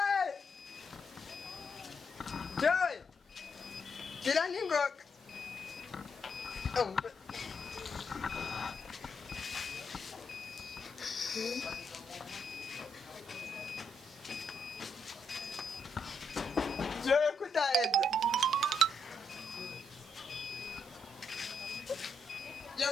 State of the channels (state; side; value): normal; both; correlation 0.78